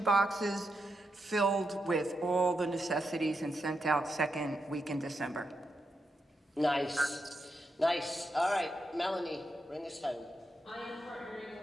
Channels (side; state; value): both; normal; correlation 0.85